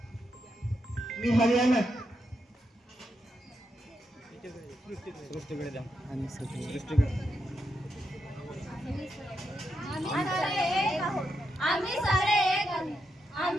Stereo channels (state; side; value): normal; both; correlation 0.83